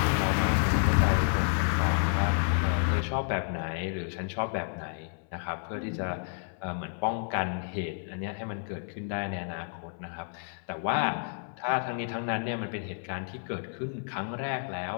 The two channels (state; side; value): silent; right; 58 dB below the other